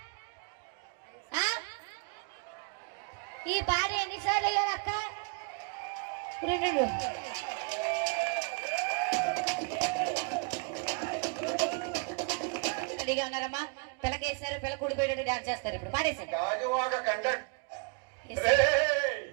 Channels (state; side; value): quieter; left; 34.0 dB